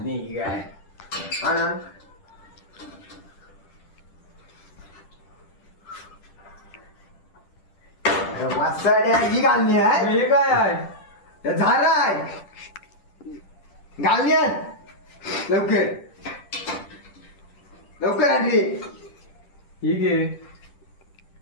काय हा ना वासाड्या ही गालनी आहे हे काय आहे. झाड आहे गालनी आण लवकर लवकर आण रे ठीक आहे.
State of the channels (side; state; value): right; late; 10 ms